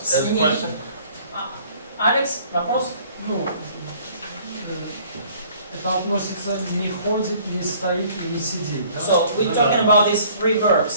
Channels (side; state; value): both; inverted; correlation -0.55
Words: has a question? Алекс, вопрос? Ну, это относится не ходит, не стоит и не сидит, да? So we're talking about these 3